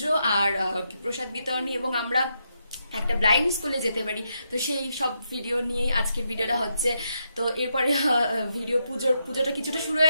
আর প্রসাদ বিতরণী এবং আমরা একটা ব্লাইন্ড স্কুলে যেতে পারি, তো সেই সব ভিডিও নিয়েই আজকের ভিডিওটা হচ্ছে। তো এরপরে ভিডিও পুজোটা কিছুটা শুরু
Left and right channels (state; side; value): inverted; both; correlation -0.81